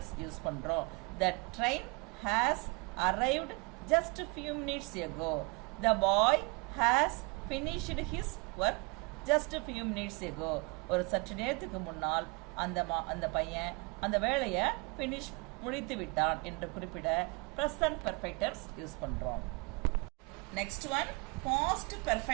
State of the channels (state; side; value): quieter; left; 30.1 dB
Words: யூஸ் பண்றோம். The train has arrived just a few minutes ago. The boy has finished his work just a few minutes ago. ஒரு சற்று நேரத்துக்கு முன்னால் அந்த பையன் அந்த வேலையை finish முடித்து விட்டான் என்று குறிப்பிட present perfect tense யூஸ் பண்றோம். Next one, past